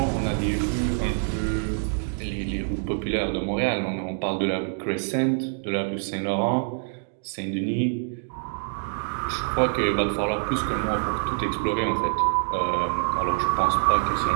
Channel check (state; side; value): silent; left; digital silence